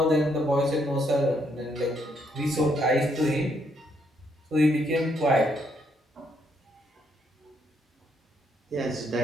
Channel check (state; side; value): normal; both; correlation 0.73